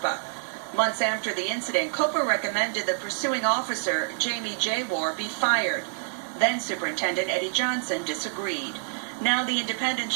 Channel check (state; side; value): silent; left; digital silence